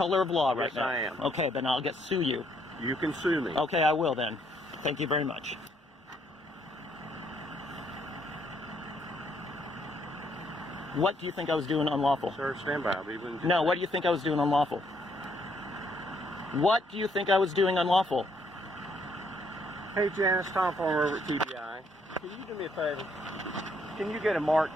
of law right now? Yes, I am. Okay, then I'll sue you. You can sue me. Okay, I will then. Thank you very much. What do you think I was doing unlawful? Sir, stand by. I'll be willing to- No, what do you think I was doing unlawful? What do you think I was doing unlawful? Hey, Janice, Tom Farmer over at TBI. Can you do me a favor? Can you get a mark?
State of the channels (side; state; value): both; normal; correlation 0.70